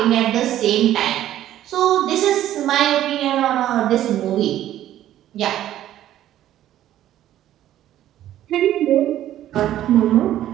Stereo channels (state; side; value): quieter; left; 12.6 dB